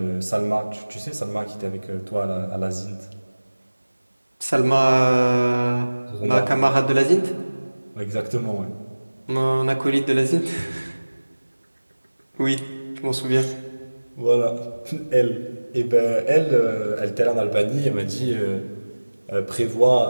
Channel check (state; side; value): inverted; both; correlation -1.00